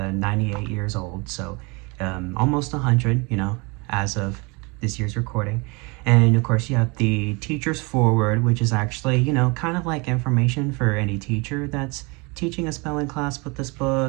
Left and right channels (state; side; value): quieter; left; 28.6 dB